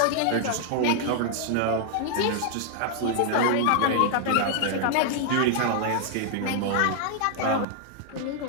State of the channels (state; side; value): different; both; correlation 0.00